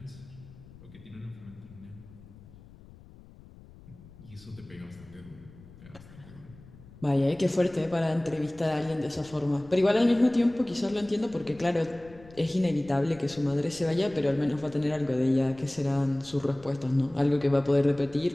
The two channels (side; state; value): left; noise; rumble, 21 dB below the sound